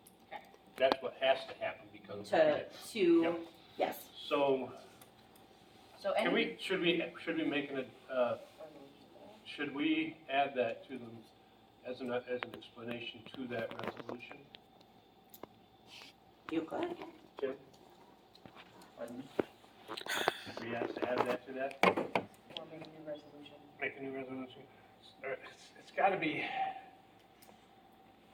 That's what has to happen because. To, Yep. yes, So, So can any, should we make should we add that to them as an explanation to that resolution? you could. Tim, Pardon me? we have to add that to that? Or make a new resolution. Make a new resolution? It's gotta be,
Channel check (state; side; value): identical; both; correlation 1.00